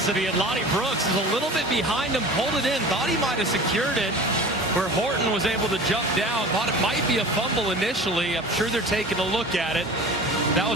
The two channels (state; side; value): normal; both; correlation 0.38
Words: And Lonnie Brooks is a little bit behind him, pulled it in, thought he might have secured it, where Horton was able to jump down, thought it might be a fumble initially. I'm sure they're taking a look at it. That